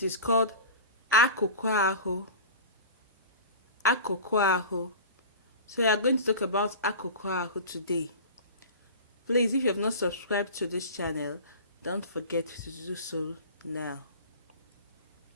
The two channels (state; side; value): inverted; both; correlation -0.35